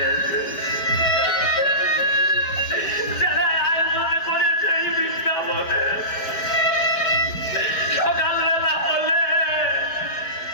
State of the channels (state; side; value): late; right; 4.8 ms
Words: যারা আয়োজন করেছে এই বৃন্দাবনে, সকালবেলা হলে